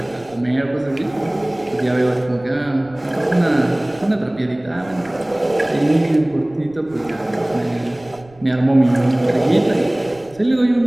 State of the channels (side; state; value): right; noise; rumble, 26 dB below the sound